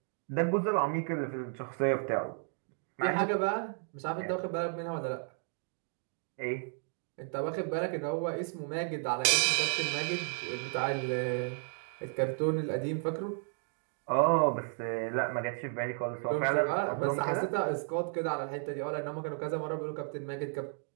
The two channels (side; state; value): left; silent; 56 dB below the other